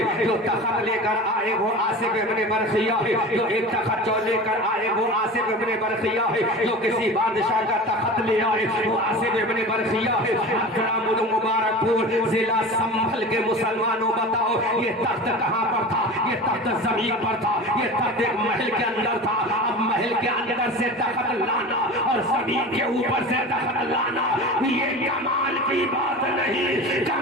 جو تخت لے کر آئے وہ آصف ابن برقیہ ہے، جو ایک تخت جو لے کر آئے وہ آصف ابن برقیہ ہے، جو کسی بادشاہ کا تخت لے آئے وہ آصف ابن برقیہ ہے۔ اکرام المبارک پور ضلع سنبھل کے مسلمانوں بتاؤ یہ تخت کہاں پر تھا؟ یہ تخت زمین پر تھا، یہ تخت ایک محل کے اندر تھا۔ اب محل کے اندر سے تخت لانا اور زمین کے اوپر سے تخت لانا یہ کمال کی بات نہیں،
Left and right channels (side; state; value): both; normal; correlation 0.33